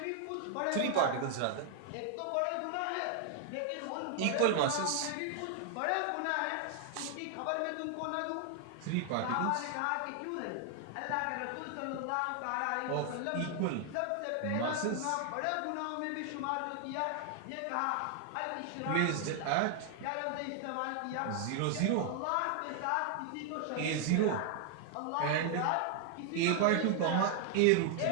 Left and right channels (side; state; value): both; different; correlation 0.00